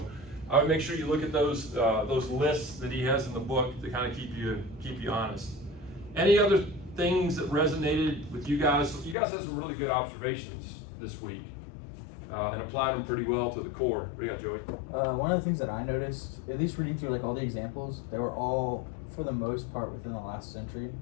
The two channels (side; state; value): right; drops out; at 9.2 s